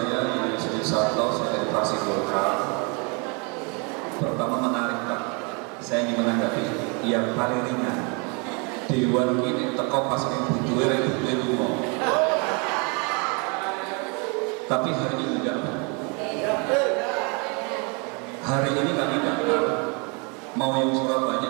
Yusri Sarto, saya dari fraksi Golkar. Pertama menarik Pak, saya ingin menanggapi yang paling ringan. Dewan ini teko pas butuhe lunga. Tapi hari ini enggak. Hari ini kami datang, mau yang Surabaya,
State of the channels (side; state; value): left; quieter; 33.2 dB